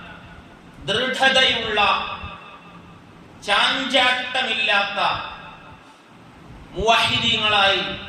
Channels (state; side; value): identical; both; correlation 1.00